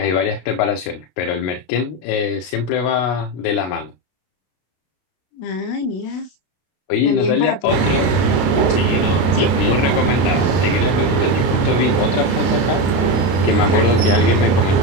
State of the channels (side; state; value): right; late; 32 ms